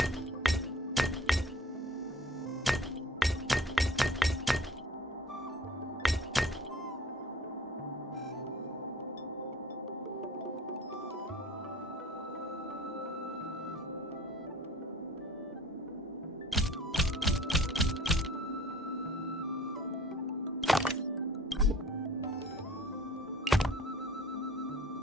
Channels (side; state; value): both; normal; correlation 0.50